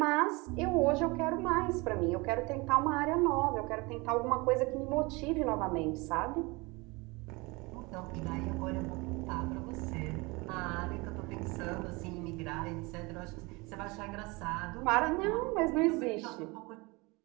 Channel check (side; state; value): left; quieter; 25.5 dB